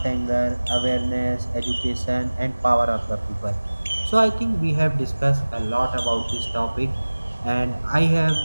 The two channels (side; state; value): both; inverted; correlation -1.00